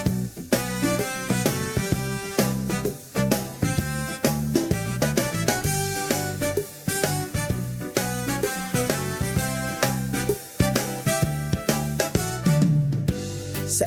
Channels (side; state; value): both; identical; correlation 1.00